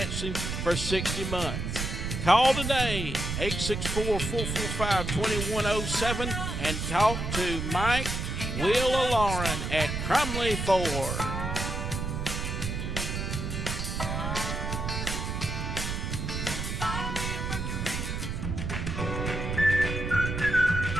for 60 months. Call today, 864-445-2107, and talk to Mike, Will, or Lauren at Crumley Ford.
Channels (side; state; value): right; noise; rumble, 3 dB below the sound